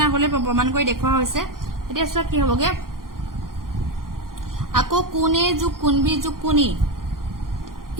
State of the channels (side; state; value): left; late; 0.91 ms